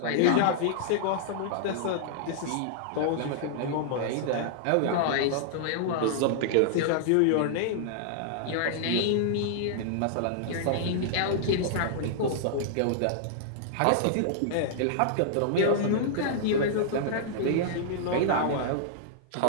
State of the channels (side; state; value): both; different; correlation -0.01